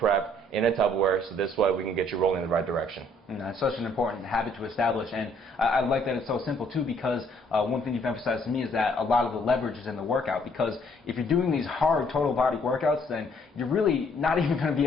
in a Tupperware, so this way we can get you rolling in the right direction. It's such an important habit to establish, and I like that it's so simple too, because one thing you've emphasized to me is that a lot of the leverage is in the workout, because if you're doing these hard total body workouts, then you're really not even going to be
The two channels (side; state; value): both; normal; correlation 0.64